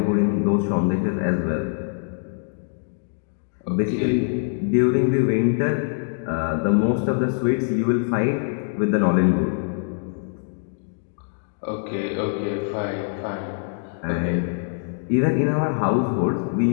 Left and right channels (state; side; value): silent; right; 63 dB below the other